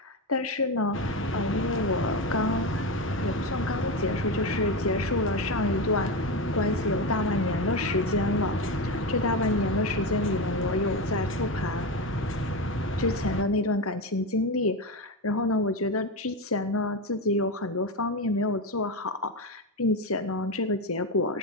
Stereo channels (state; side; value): normal; both; correlation 0.16